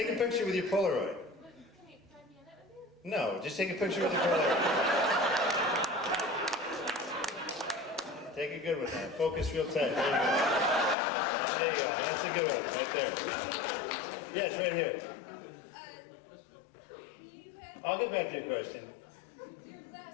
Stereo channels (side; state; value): right; drops out; at 11.0 s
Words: a picture with your Polaroid. No, just take a picture with your Polaroid. Take a good one now. Focus real tight. There you go. That's a good one, right there. Yes, right here. I'll get back to your question. Your